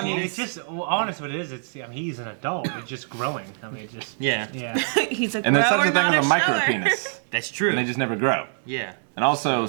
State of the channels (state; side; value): silent; left; digital silence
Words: mean, penis. it's just, well, honest what it is, it's, I mean, he's an adult, it's just growing. I mean, it's just, Yeah. He's a And there's grower, such a thing not as a micro shower. penis. That's true. And they just never grow. Yeah. And also,